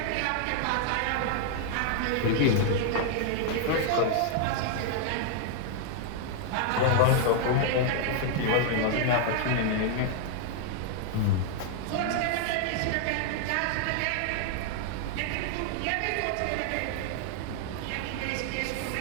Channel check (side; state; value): both; different; correlation 0.00